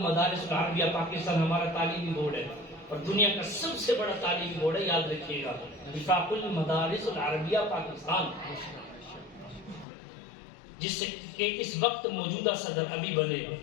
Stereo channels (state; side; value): drops out; right; at 9.9 s